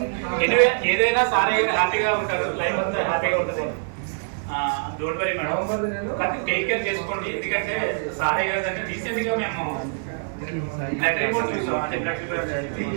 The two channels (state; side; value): silent; left; digital silence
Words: ఎనివే ఏదైనా సార్ గారు హ్యాపీగా ఉంటారు, లైఫ్ అంతా హ్యాపీగా ఉంటుంది. డోంట్ వరీ మేడం, కానీ టేక్ కేర్ చేసుకోండి. ఎందుకంటే సారే గారు అంటే రీసెంట్గా మేము బ్లడ్ రిపోర్ట్ చూసాం, అంటే బ్లడ్ రిపోర్ట్